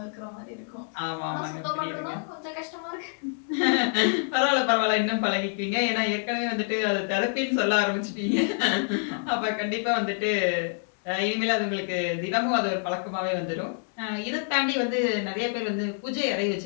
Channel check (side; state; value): right; silent; 60 dB below the other